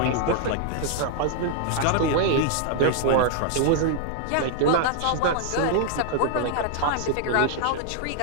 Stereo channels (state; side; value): different; both; correlation 0.00